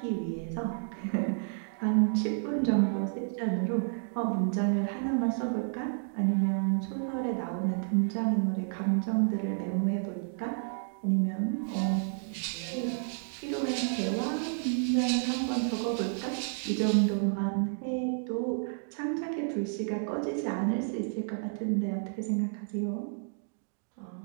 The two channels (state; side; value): silent; left; digital silence